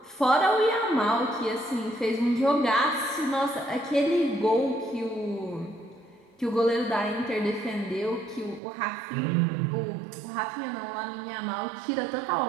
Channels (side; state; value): left; drops out; at 8.6 s